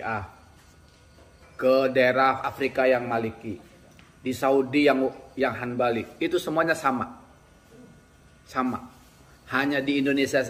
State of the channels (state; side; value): identical; both; correlation 1.00